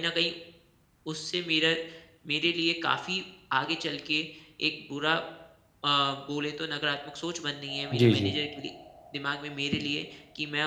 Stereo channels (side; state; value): both; identical; correlation 1.00